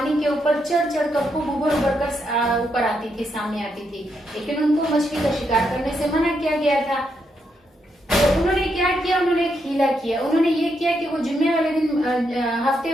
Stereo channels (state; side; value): normal; both; correlation 0.80